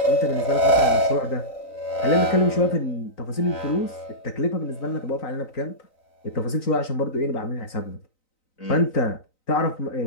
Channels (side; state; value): right; late; 3.9 ms